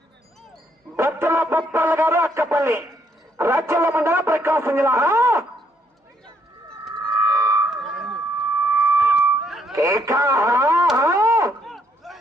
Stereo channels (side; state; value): both; normal; correlation 0.70